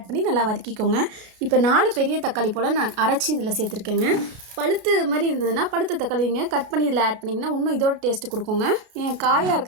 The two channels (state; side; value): late; left; 33 ms